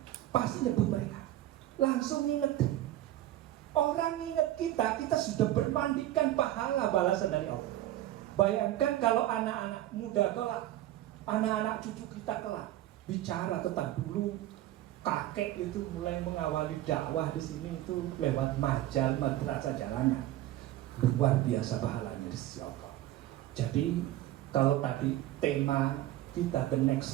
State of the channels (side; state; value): left; quieter; 14.1 dB